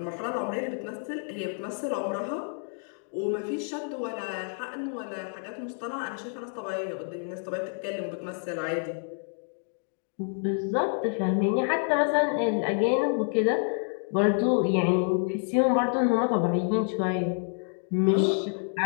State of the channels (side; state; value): right; silent; 59 dB below the other